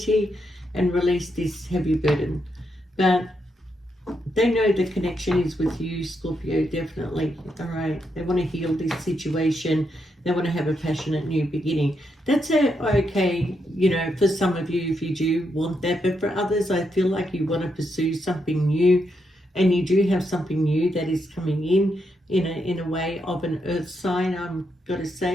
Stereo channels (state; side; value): normal; both; correlation 0.81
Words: and release this heavy burden. But they know the connection is with you, Scorpio, definitely. All right. They want to heal this situation. They want to have a passionate new beginning. That's okay, you know, for some of you, if you do want that. But for others, I feel like you want to pursue something new. And you do have something new that is coming in a way of an earth sign, I'm got to